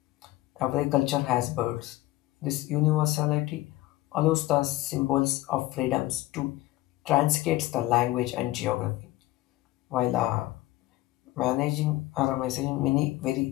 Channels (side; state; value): right; quieter; 17.4 dB